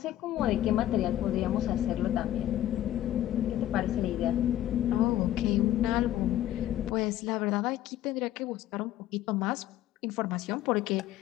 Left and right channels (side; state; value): right; quieter; 13.0 dB